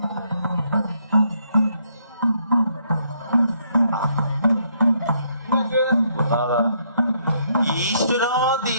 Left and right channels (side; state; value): both; inverted; correlation -0.72